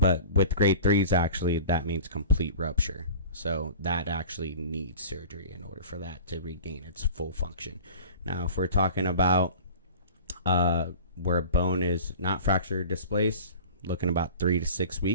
with grade 3s, actually, that means complete rupture. So that actually needs surgery in order for that to regain its full function. Now, if we're talking about where a bone is not fractured or displaced, looking about 3 to 6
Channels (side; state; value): both; inverted; correlation -0.40